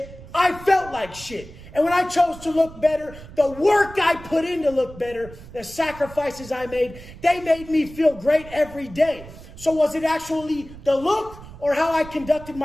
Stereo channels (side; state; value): right; noise; rumble, 17 dB below the sound